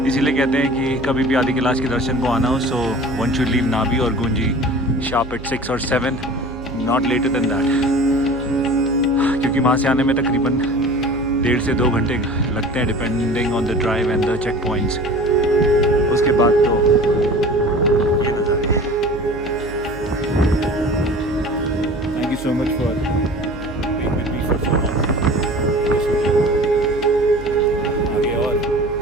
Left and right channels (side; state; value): right; noise; hum, 14 dB below the sound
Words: इसीलिए कहते हैं कि कभी भी आदि कैलाश के दर्शन को आना हो, सो वन शुड लीव नाभी और गुंजी शार्प एट 6 और 7, नॉट लेटर देन दैट, क्योंकि वहाँ से आने में तकरीबन 1.5 से 2 घंटे लगते हैं, depending on the drive and the checkpoints. उसके बाद तो ये नज़ारे हैं। Thank you so much for being with me for so long.